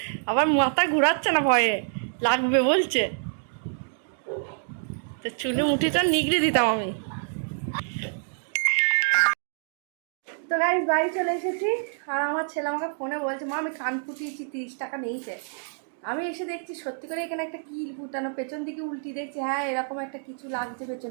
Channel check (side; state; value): left; silent; digital silence